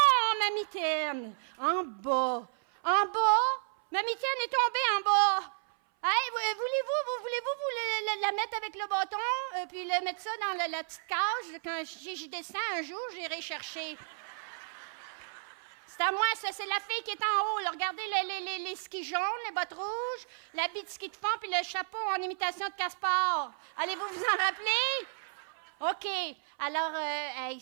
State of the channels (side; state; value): left; silent; 56 dB below the other